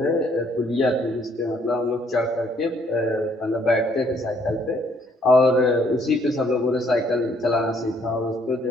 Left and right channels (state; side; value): normal; both; correlation 0.66